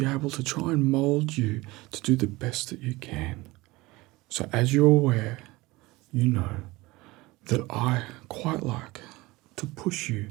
able to try and mold you to do the best that you can. So as you're aware, you know that I quite like to push you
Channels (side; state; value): left; quieter; 21.1 dB